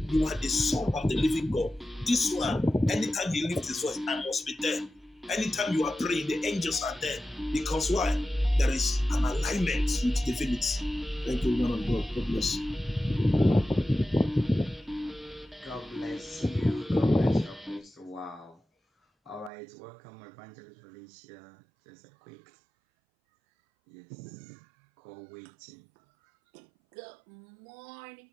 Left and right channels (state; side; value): drops out; left; at 19.5 s